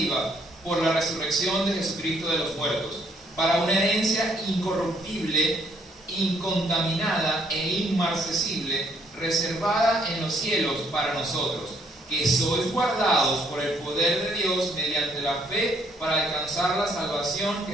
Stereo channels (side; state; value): both; normal; correlation 0.67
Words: por la resurrección de Jesucristo de los muertos, para una herencia incorruptible incontaminada e inmarcesible, reservada en los cielos para nosotros, que sois guardados por el poder de Dios mediante la fe para alcanzar la salvación